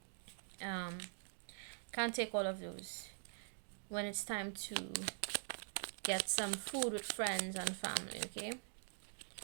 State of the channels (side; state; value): left; silent; digital silence